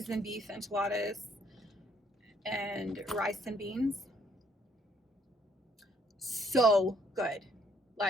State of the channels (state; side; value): normal; both; correlation 0.66